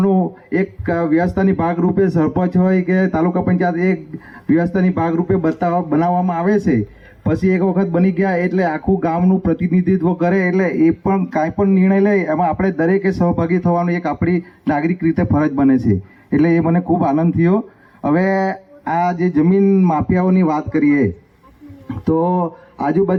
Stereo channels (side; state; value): both; identical; correlation 1.00